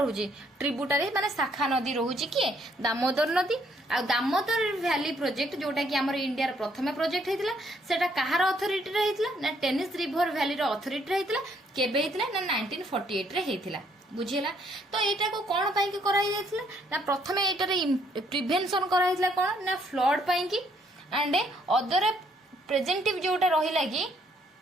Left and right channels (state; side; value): normal; both; correlation 0.68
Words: ट्रिब्यूटरी माने शाखा नदी रहउची कि दामोदर नदी। आ दामोदर वैली प्रोजेक्ट जोटा कि हमर इंडिया रो प्रथम प्रोजेक्ट हेतिला सेटा कहार अथॉरिटी रे हेतिला ना टेनिस रिवर वैली रो अथॉरिटी रे हेतिला। केबे हेतिला ना 1948 रे हेतिला। बुझिला, तो एटा को कोन पई कि कराई जायतिला ना प्रथमे एटा रे प्रिवेंशन कराई दिला कोन ना फ्लड पई कि एंड अदर प्रेजेंटिव जोटा रहिला कि